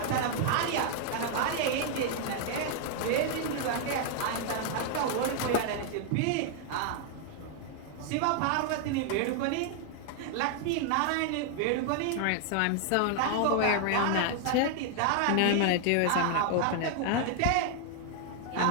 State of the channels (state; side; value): different; both; correlation 0.00